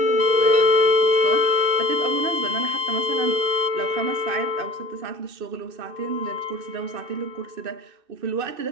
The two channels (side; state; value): left; late; 2.6 ms